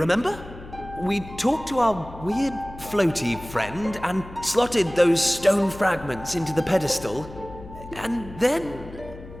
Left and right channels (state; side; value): noise; left; hum, 16 dB below the sound